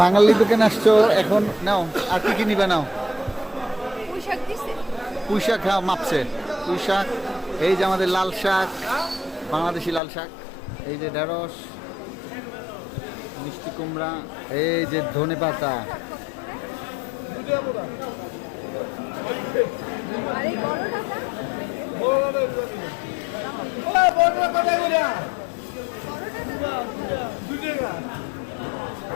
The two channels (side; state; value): right; drops out; at 10.0 s